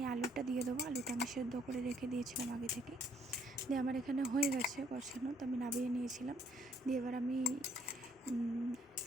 আলুটা দিয়ে দেবো। আলুটা আমি সেদ্ধ করে রেখে দিয়েছিলাম আগে থেকে। দিয়ে আমার এখানে হয়ে গেছে কষানো, তো আমি নামিয়ে নিয়েছিলাম। দিয়ে এবার আমি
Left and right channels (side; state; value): both; normal; correlation 0.66